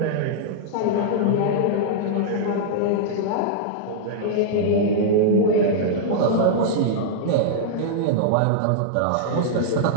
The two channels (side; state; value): both; different; correlation -0.02